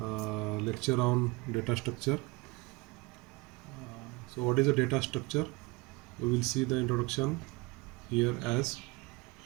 lecture on data structure. So what is a data structure? We will see the introduction here as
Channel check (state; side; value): quieter; left; 24.2 dB